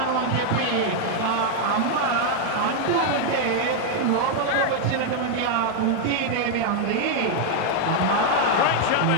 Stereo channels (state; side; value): different; both; correlation 0.00